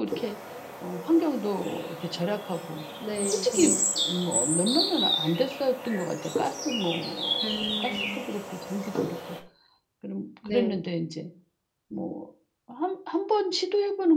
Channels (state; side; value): identical; both; correlation 1.00